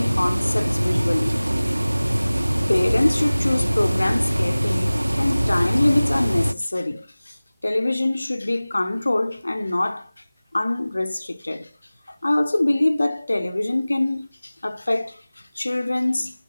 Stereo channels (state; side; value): inverted; both; correlation -0.99